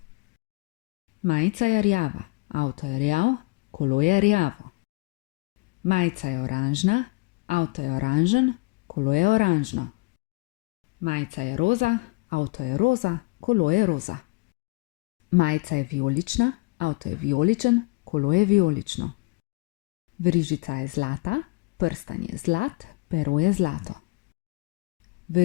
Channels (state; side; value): quieter; right; 26.3 dB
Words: Majica je rjava, avto je rjav, kolo je rjavo. Majica je oranžna, avto je oranžen, kolo je oranžno. Majica je roza, avto je roza, kolo je roza. Majica je vijolična, avto je vijoličen, kolo je vijolično. Verižica je zlata, prstan je zlat, pero je zlato.